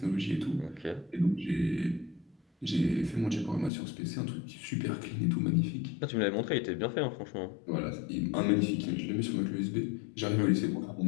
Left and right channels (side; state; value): right; drops out; at 3.7 s